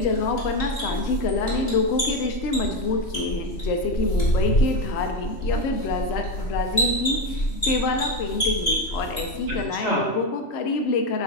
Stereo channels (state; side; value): late; right; 3.1 ms